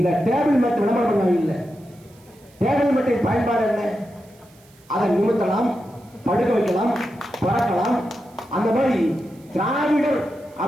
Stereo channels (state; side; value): noise; right; hiss, 29 dB below the sound